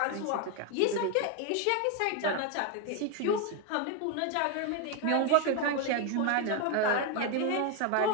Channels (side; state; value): both; different; correlation 0.01